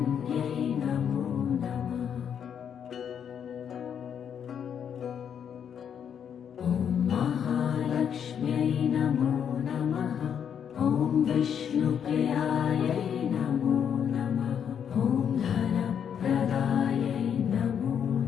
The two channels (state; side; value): quieter; right; 8.2 dB